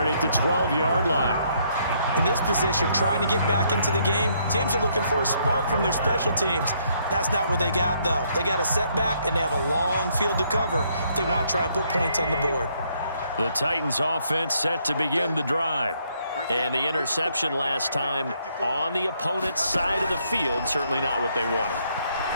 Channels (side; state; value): both; inverted; correlation -0.70